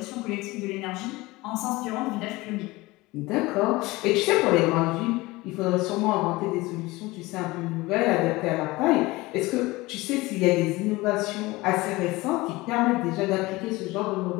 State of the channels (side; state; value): right; quieter; 21.0 dB